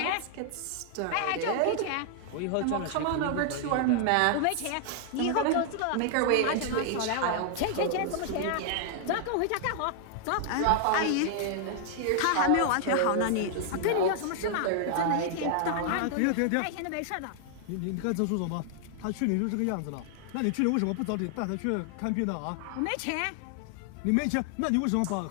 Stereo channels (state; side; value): different; both; correlation 0.00